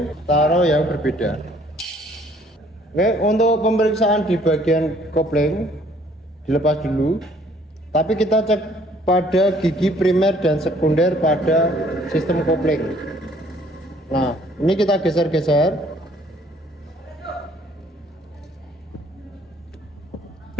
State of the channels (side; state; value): both; normal; correlation 0.59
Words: taruh yang berbeda. Oke, untuk pemeriksaan di bagian kopling dilepas dulu, tapi kita cek pada gigi primer dan sekunder pada sistem kopling. Nah, ini kita geser-geser.